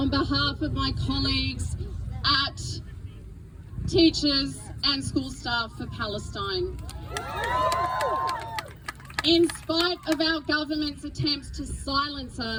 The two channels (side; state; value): both; identical; correlation 1.00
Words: behalf of my colleagues at Teachers and School Staff for Palestine. In spite of our government's attempts to silence